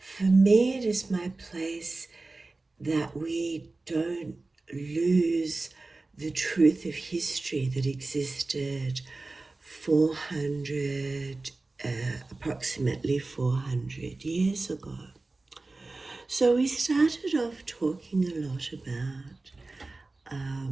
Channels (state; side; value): quieter; left; 3.3 dB